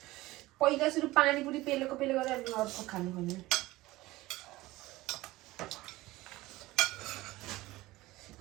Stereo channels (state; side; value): quieter; left; 18.7 dB